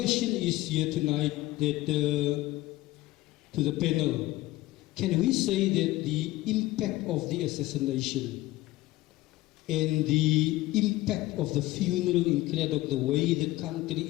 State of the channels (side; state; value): right; quieter; 17.5 dB